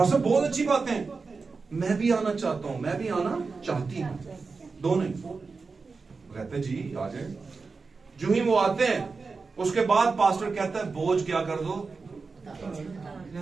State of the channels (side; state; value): left; quieter; 4.4 dB